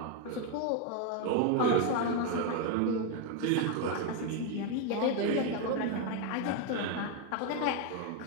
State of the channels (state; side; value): different; both; correlation 0.01